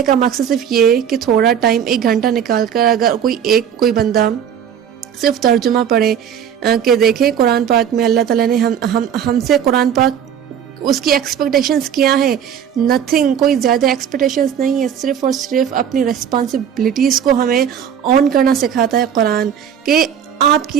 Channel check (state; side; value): quieter; left; 8.7 dB